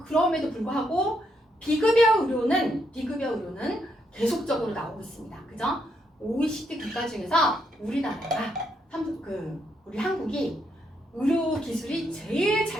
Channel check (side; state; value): both; normal; correlation 0.77